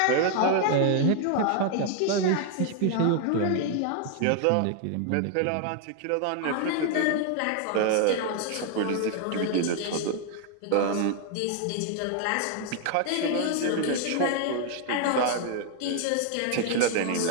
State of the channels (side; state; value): both; different; correlation 0.00